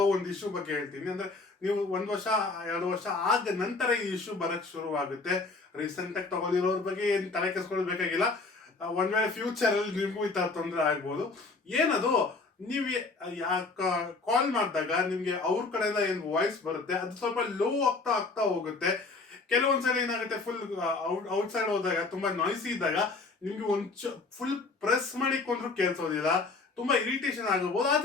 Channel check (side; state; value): right; quieter; 3.8 dB